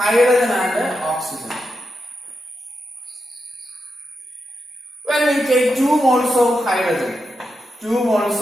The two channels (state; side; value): normal; both; correlation 0.86